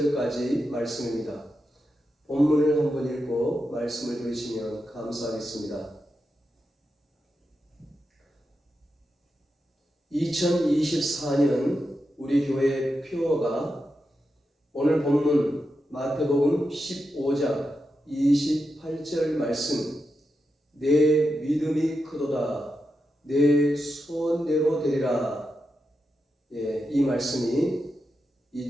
말씀입니다. 본문을 한번 읽고 말씀을 들으시면 감사하겠습니다. 2024년 우리 교회 표어가 오늘 본문 마태복음 15장 28절 말씀, 내 믿음이 크도다, 내 소원대로 되리라. 이 말씀이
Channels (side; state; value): both; normal; correlation 0.88